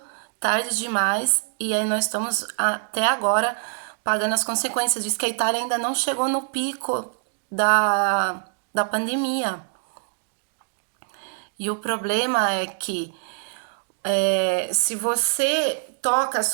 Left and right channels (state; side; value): silent; left; digital silence